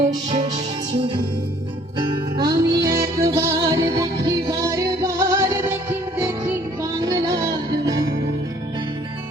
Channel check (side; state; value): both; normal; correlation 0.59